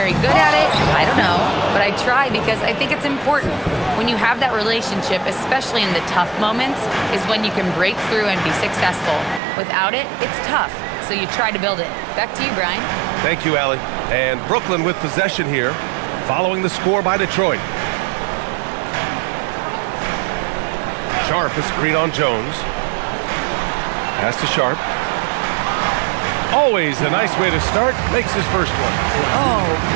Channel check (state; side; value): drops out; left; at 9.4 s